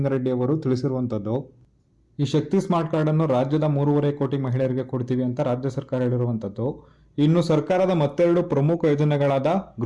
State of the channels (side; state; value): both; identical; correlation 1.00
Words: ಅವರು ತಿಳಿಸಿರುವಂಥದ್ದು. ಈ ಶಕ್ತಿ ಸ್ಮಾರ್ಟ್ ಕಾರ್ಡ್ ಅನ್ನು ರಾಜ್ಯದ 3.5 ಕೋಟಿ ಮಹಿಳೆಯರಿಗೆ ಕೊಡ್ತೀವಿ ಅಂತ ರಾಜ್ಯ ಸರ್ಕಾರ ಹೇಳಿರುವಂಥದ್ದು. ಇನ್ನು ಸರ್ಕಾರದ ಮತ್ತೆರಡು ಪ್ರಮುಖ ಯೋಜನೆಗಳಾದ